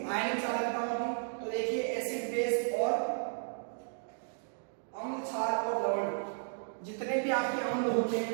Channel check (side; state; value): left; silent; digital silence